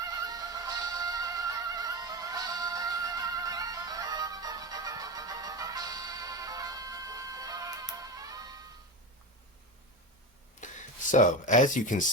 So, as you can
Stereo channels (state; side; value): normal; both; correlation 0.22